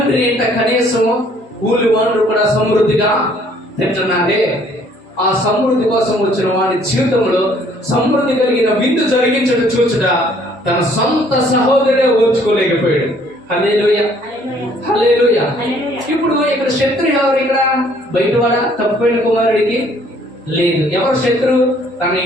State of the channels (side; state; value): both; normal; correlation 0.61